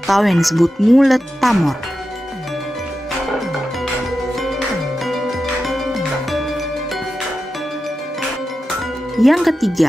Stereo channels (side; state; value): both; normal; correlation 0.91